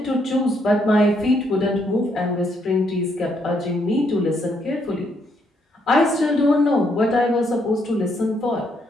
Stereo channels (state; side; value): normal; both; correlation 0.74